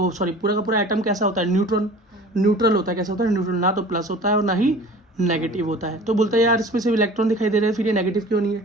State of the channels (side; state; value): both; normal; correlation 0.43